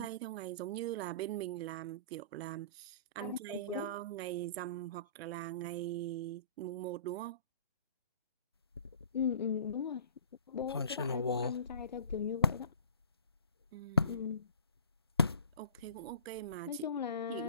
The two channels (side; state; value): both; inverted; correlation -0.46